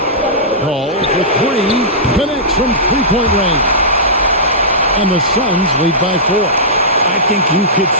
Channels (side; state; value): both; normal; correlation -0.16